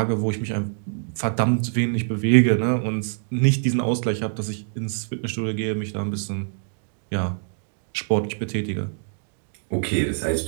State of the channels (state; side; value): silent; left; digital silence